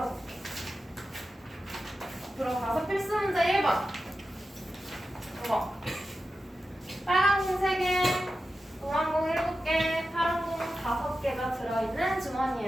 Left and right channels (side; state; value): both; normal; correlation 0.92